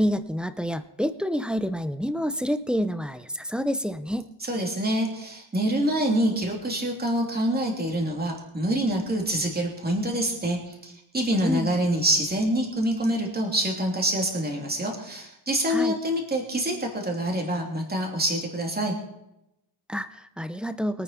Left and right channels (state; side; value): normal; both; correlation 0.54